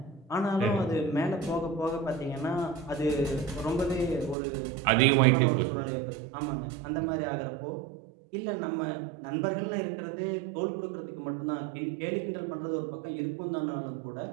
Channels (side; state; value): left; drops out; at 4.4 s